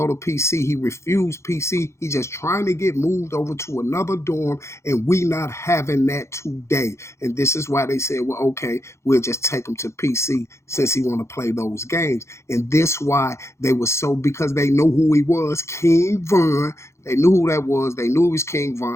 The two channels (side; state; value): right; late; 0.13 ms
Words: to PC. He refused PC. He just trying to get moved over to another dorm, and we not having that today. And this is why they said, well, okay, we'll just take him to PC since he want to play those games. And this why they were so, because they know who he was, King Von. They knew who that was. They knew he was King